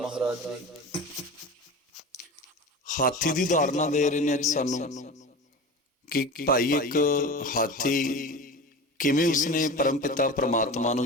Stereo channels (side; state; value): both; normal; correlation 0.31